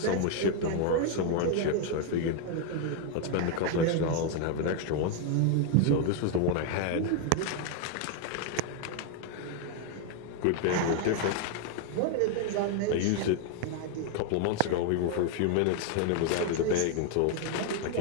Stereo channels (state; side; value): different; both; correlation 0.00